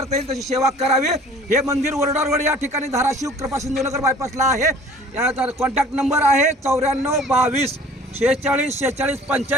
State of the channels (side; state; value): both; normal; correlation 0.49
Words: येईल तशी सेवा करावी। हे मंदिर वरोडा रोड या ठिकाणी धाराशिव कृपा सिंधूनगर बायपासला आहे। याचा कॉन्टॅक्ट नंबर आहे 94 22 46 46